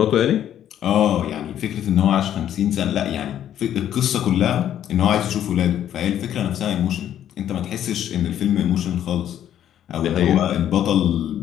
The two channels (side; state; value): right; quieter; 10.7 dB